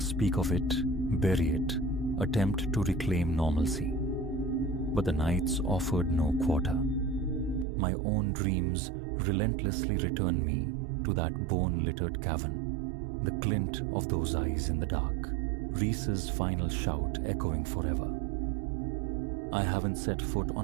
of it, bury it, attempt to reclaim normalcy. But the nights offered no quarter. My own dreams relentlessly returned me to that bone-littered cavern, the glint of those eyes in the dark, Reese's final shout echoing forever. I haven't set foot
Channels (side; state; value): left; drops out; at 7.7 s